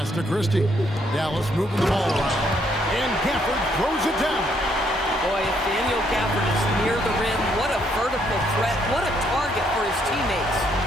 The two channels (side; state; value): both; normal; correlation 0.71